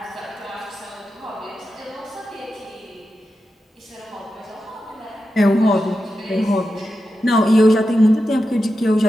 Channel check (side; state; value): both; normal; correlation 0.90